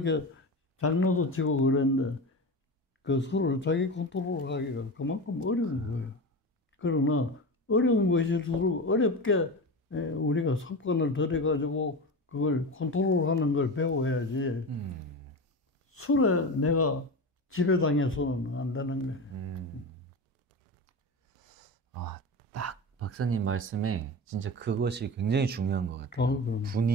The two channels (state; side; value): normal; both; correlation 0.25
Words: 장난도 치고 그랬는데 그 술을 자기 컨트롤하기가 그만큼 어려운 거예요. 그러나 어려운 것일수록 어렵게 우리가 습관을 들여가지고 그걸 컨트롤하는 걸 배워야지 술에 내가 지배당해서는 안 되는 거예요. 딱 박사님 말씀에 진짜 그것이 굉장히 중요한 것 같아요.